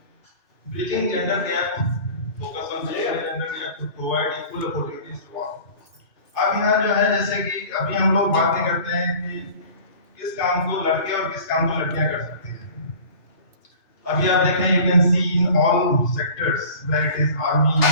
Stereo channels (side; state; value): right; late; 3.4 ms